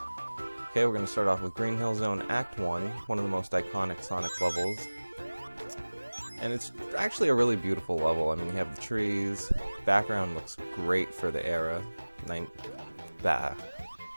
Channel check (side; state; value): both; inverted; correlation -1.00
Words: Okay, we're going to start off with Green Hill Zone Act 1, one of the most iconic Sonic levels. And it's actually a really beautiful level. I mean, you have the trees, background looks great for the era,